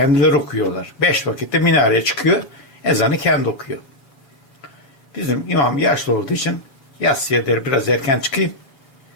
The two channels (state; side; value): late; right; 7.2 ms